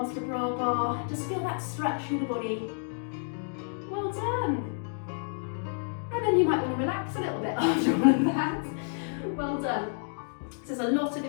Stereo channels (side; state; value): right; silent; digital silence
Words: to bra bar. Just feel that stretch through the body. Well done. And then you might want to relax a little bit after all of that. Well done. So there's a lot of